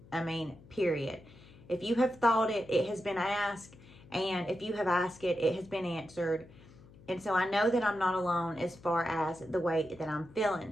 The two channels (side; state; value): left; noise; hum, 22 dB below the sound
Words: Period. If you have thought it, it has been asked. And if you have asked it, it has been answered. And so I know that I'm not alone as far as the way that I'm